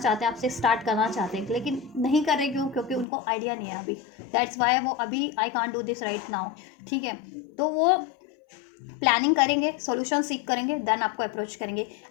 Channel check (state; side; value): drops out; right; at 3.1 s